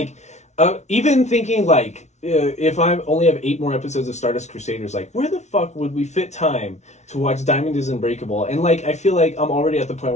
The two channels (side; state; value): right; late; 0.32 ms